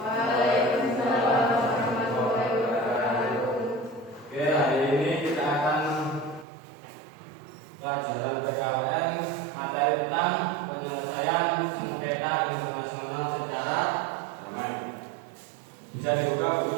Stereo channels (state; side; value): drops out; left; at 6.5 s